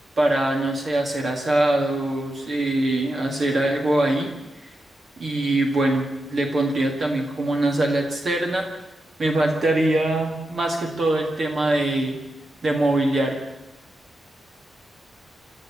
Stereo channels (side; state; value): both; normal; correlation 0.88